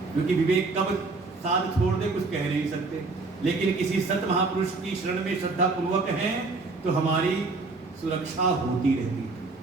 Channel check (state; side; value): quieter; left; 3.7 dB